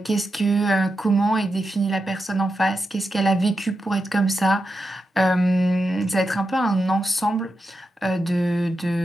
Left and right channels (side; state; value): both; normal; correlation 0.88